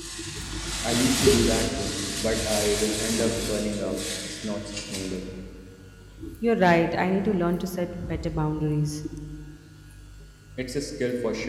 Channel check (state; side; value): identical; both; correlation 1.00